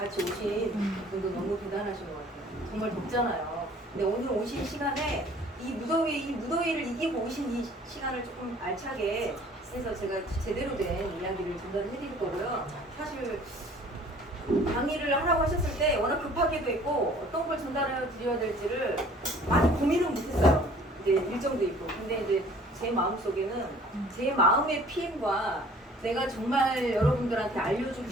오신 분도 너무 대단하신 것 같아요. 정말 덥잖아요. 근데 오늘 오신 시간에 이 무더위를 이기고 오신 이 시간을 조금 알차게 해서 제가 제대로 된 이야기를 전달해 드릴 거고요. 사실 강의를 하라고 하셨을 때 워낙 급하게도 있고 어떤 걸 전달해 드려야 될지를 많이 고민은 못했어요. 이제 일정도 있고. 근데 이제 제 마음속에는 제 마음의 PM과 내가 정말 여러분들한테 알려주고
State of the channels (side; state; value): both; normal; correlation 0.52